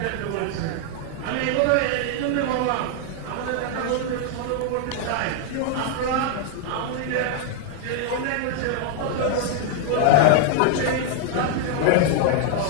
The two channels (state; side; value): different; both; correlation 0.00